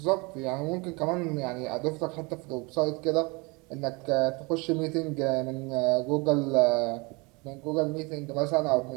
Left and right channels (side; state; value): left; quieter; 27.8 dB